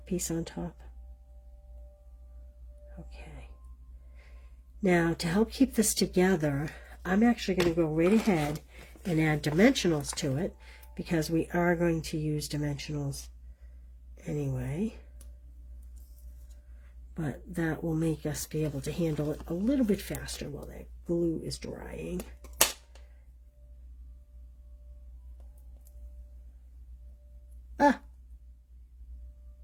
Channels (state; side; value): identical; both; correlation 1.00